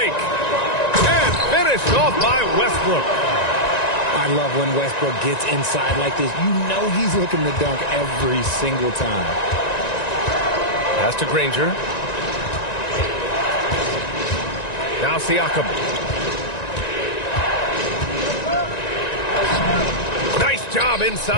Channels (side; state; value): right; late; 1.9 ms